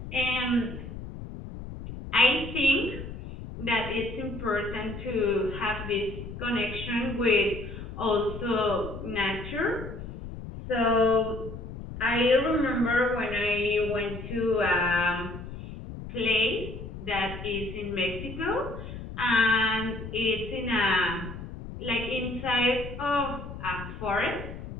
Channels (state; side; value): noise; left; rumble, 10 dB below the sound